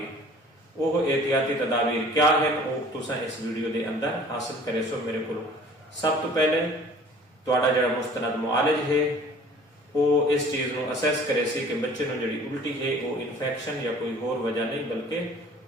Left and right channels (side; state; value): both; normal; correlation 0.49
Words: वो एहतियाती तदाबीर क्या है वो तुसा इस वीडियो के अंदर हासिल करे सो मेरे को। सब तो पहले तुहाडा जिहड़ा मुस्तनद मुआलिज है वो इस चीज़ को असैस करे सी कि बच्चे को जी उल्टी है वो इन्फेक्शन या कोई होर वजह नहीं बल्कि